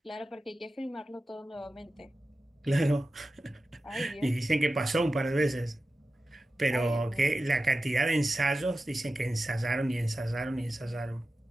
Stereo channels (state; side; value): normal; both; correlation 0.93